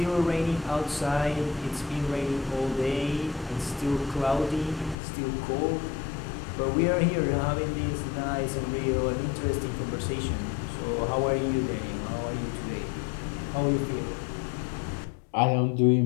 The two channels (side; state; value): right; drops out; at 5.0 s